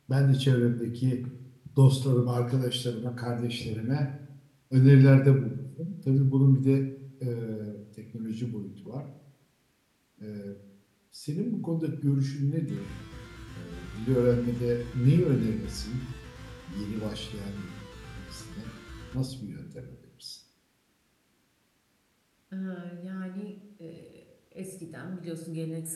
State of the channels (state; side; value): identical; both; correlation 1.00